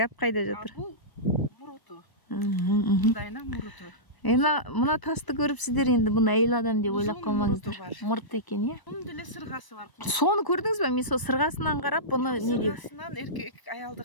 кайда жатыр? Бул муруту. Мындайына муруту. Мына тасты көрүп сиздер енді бұны әйел адам деп ойлап қалмаңыздар. Мұрт екен, иә? Оның деле сырғасы бар. Соны көрдіңіз бе? Мен сол сырғасынан қарап бұны не деп? Сырғасынан еркек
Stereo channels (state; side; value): late; right; 1.0 ms